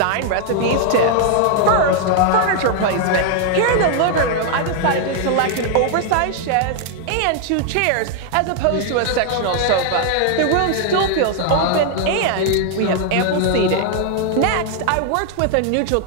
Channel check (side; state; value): both; different; correlation 0.00